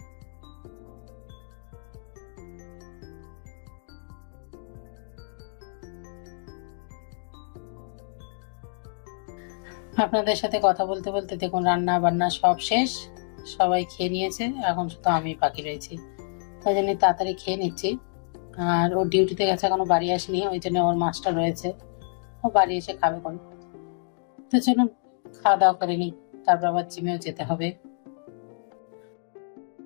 আপনাদের সাথে কথা বলতে বলতে দেখুন রান্না বান্না সব শেষ, সবাই খেয়ে নিয়েছে, এখন শুধু আমি বাকি রয়েছি। ওই জন্য তাড়াতাড়ি খেয়ে নিচ্ছি। আর ও ডিউটিতে গেছে, এখনো বাড়ি আসেনি, ওই জন্য ওর মাছটা রয়েছে, ও বাড়ি এসে খাবে কোন। তো চলুন খাওয়া দাওয়া করে নিই, তারপর আবার জিমেও যেতে হবে।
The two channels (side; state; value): right; silent; digital silence